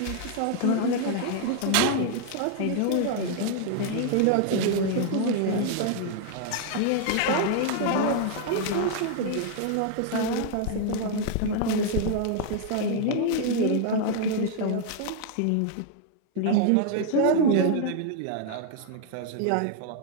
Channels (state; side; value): different; both; correlation 0.00